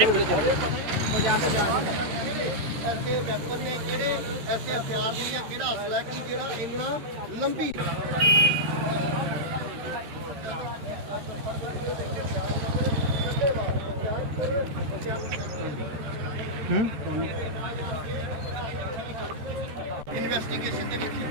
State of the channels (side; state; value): left; late; 13 ms